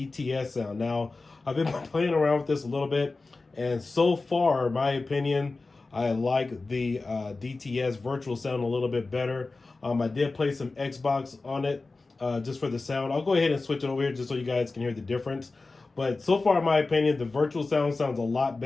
sound. Now, I've been playing around with this a little bit, and so far, in my opinion, I like the DTS virtual sound a little bit better. I did play some Xbox on it just for the sound. I'll go ahead and switch it over here just so you guys can hear the difference. But so far, in my opinion, the virtual sound sounds a lot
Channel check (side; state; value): right; quieter; 3.6 dB